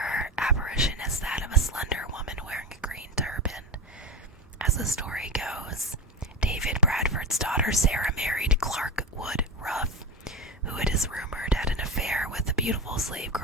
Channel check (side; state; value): both; normal; correlation 0.20